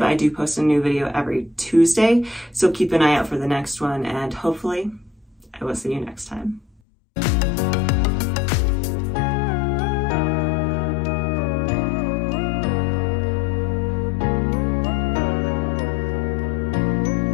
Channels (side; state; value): right; drops out; at 6.8 s